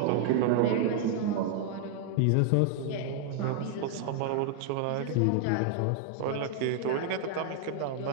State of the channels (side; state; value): both; different; correlation 0.00